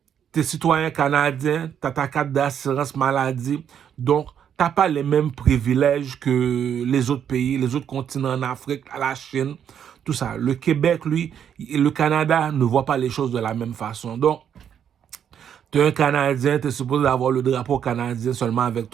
tu es citoyen canadien, tu as ta carte d'assurance maladie. Donc, tu n'as pas les mêmes privilèges que les autres pays, les autres continents en Afrique, la Chine, tout ça. Le Québec, lui, le Canada ne voit pas les choses de la même façon. Donc, tu es un Canadien, tu es supposé avoir le drapeau canadien seulement avec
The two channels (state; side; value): quieter; left; 8.7 dB